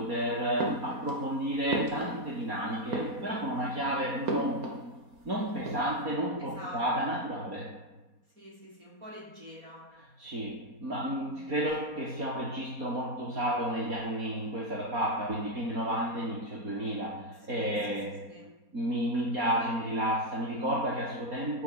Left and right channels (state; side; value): late; left; 4.2 ms